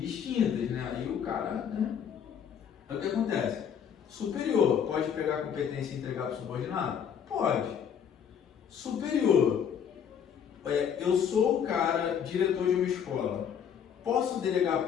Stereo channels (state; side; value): quieter; right; 8.0 dB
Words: né? Aí o cara, né? Aí o que acontece? Superior pode pegar a competência e entregar para o subordinado? Pode. Superior, eu sou o cara, diretor de uma escola. Posso delegar